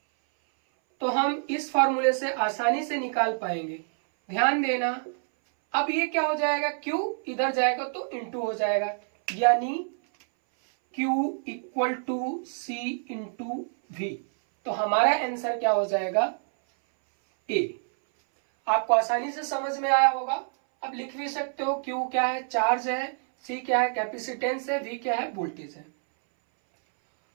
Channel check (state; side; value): silent; left; 60 dB below the other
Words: तो हम इस फार्मूले से आसानी से निकाल पाएंगे। ध्यान देना, अब ये क्या हो जाएगा, Q इधर जाएगा तो इंटू हो जाएगा, यानी Q equal to C into V। तो हमारा आंसर क्या हो जाएगा, A। आपको आसानी से समझ में आया होगा। अब लिख भी सकते हो, Q क्या है, चार्ज है, C क्या है, कैपेसिटेंस है, V क्या है, वोल्टेज है।